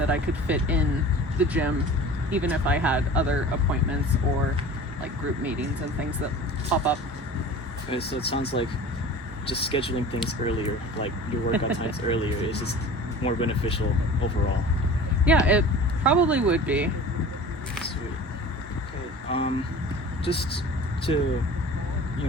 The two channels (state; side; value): normal; both; correlation 0.40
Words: I could fit in the gym, even if I had other appointments or like group meetings and things that pop up. Okay, so it sounds like just scheduling things earlier, like your workout times earlier, is just more beneficial overall. Yeah, it probably would be. Sweet. Okay. Just to,